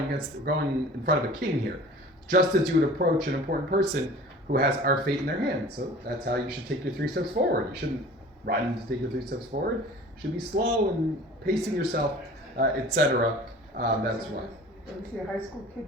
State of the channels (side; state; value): both; normal; correlation 0.43